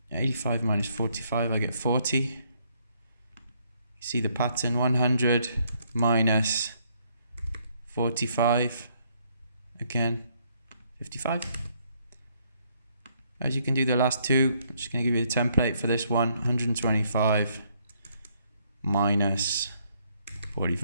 85 minus 45, I get 40. You see the pattern, 100 minus 45, again, 55. As you can do the last two, I'm just going to give you the template for this one, 125 minus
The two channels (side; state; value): both; inverted; correlation -0.70